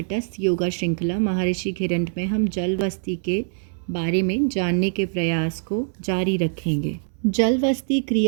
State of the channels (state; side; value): silent; left; 63 dB below the other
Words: योगा श्रृंखला महर्षि घिरंड में हम जल वस्ती के बारे में जानने के प्रयास को जारी रखेंगे। जल वस्ती